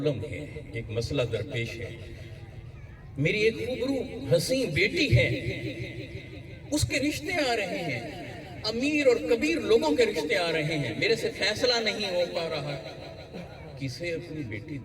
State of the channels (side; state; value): both; identical; correlation 1.00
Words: ہے، ایک مسئلہ درپیش ہے، میری ایک خوبرو حسین بیٹی ہے، اس کے رشتے آ رہے ہیں، امیر اور کبیر لوگوں کے رشتے آ رہے ہیں، میرے سے فیصلہ نہیں ہو پا رہا، کسے اپنی بیٹی